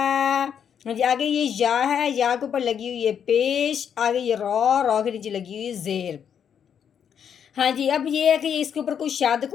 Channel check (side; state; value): right; quieter; 8.1 dB